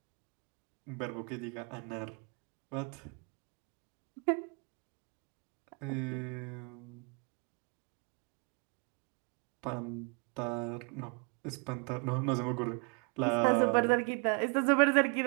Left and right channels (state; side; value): quieter; left; 35.2 dB